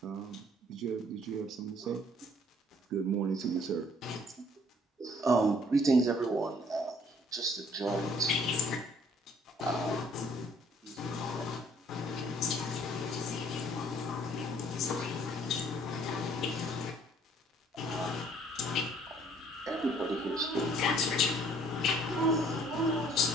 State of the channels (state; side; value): normal; both; correlation 0.60